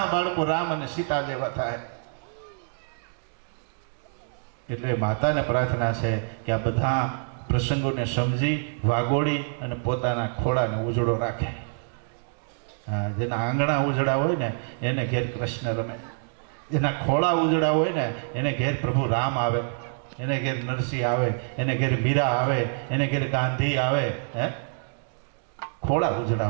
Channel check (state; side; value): silent; left; digital silence